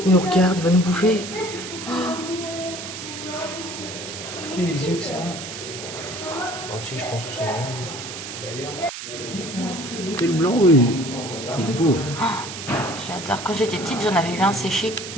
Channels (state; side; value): noise; right; hiss, 9 dB below the sound